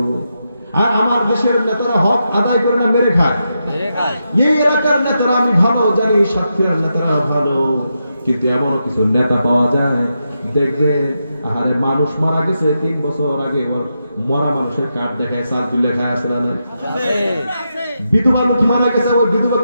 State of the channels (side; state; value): both; inverted; correlation -0.85